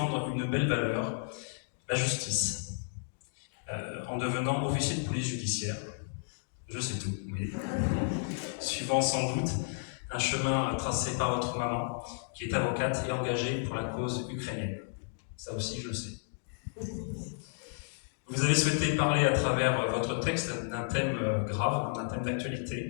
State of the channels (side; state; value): right; silent; digital silence